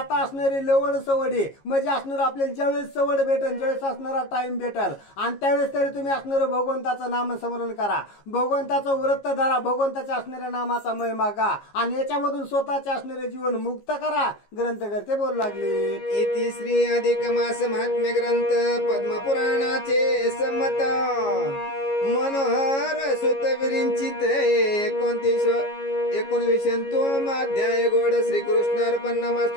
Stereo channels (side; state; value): right; late; 15 ms